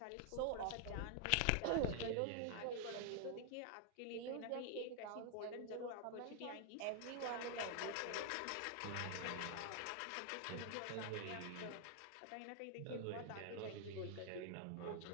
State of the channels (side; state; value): both; different; correlation 0.00